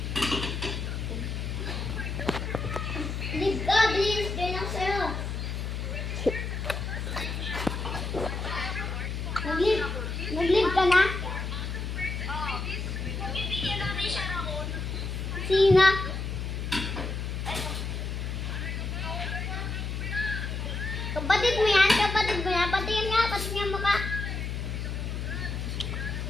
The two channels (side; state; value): left; noise; hum, 3 dB below the sound